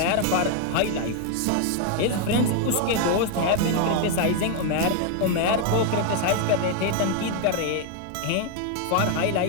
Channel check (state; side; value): different; both; correlation 0.00